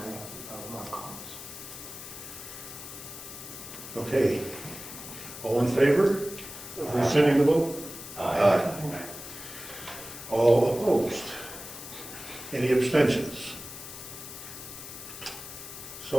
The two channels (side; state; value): left; noise; hiss, 12 dB below the sound